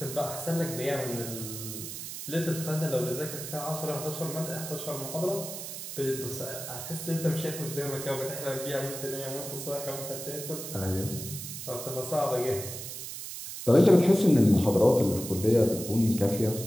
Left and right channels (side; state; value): right; noise; hiss, 8 dB below the sound